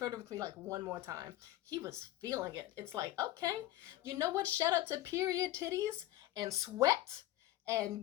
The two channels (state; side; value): quieter; right; 15.2 dB